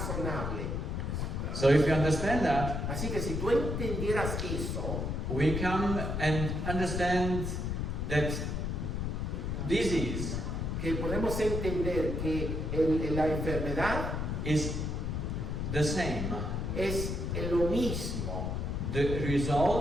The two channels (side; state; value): left; noise; rumble, 2 dB below the sound